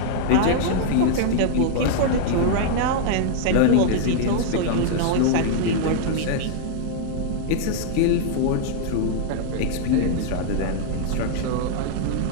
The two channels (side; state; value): both; different; correlation -0.01